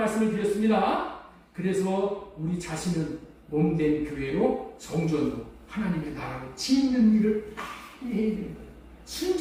드렸습니다. 그래서 우리 자신은 몸된 교회로 성전으로 하나님의 나라로 짓는 일을 빨리 해야 되는 거예요.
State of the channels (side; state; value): both; identical; correlation 1.00